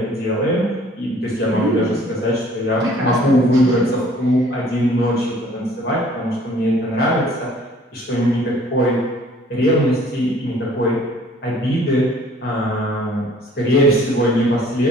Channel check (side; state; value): both; normal; correlation 0.55